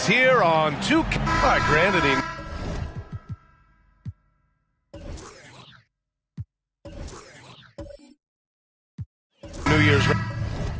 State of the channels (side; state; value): both; identical; correlation 1.00